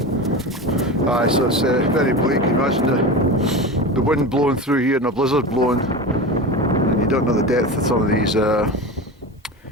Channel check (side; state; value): both; normal; correlation 0.26